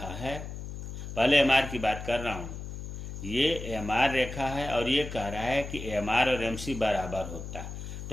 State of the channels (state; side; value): noise; left; hum, 8 dB below the sound